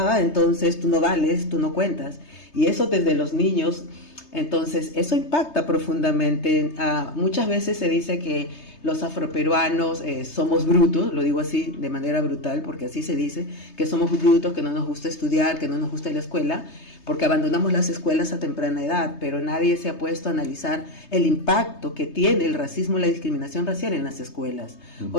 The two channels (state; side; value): late; right; 3.3 ms